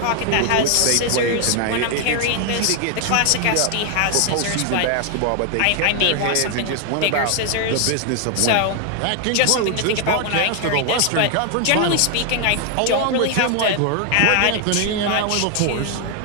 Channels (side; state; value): both; different; correlation 0.00